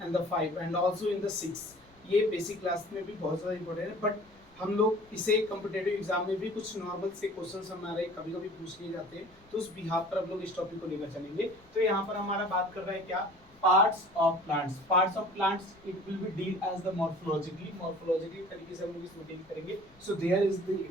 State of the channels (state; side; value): noise; left; rumble, 28 dB below the sound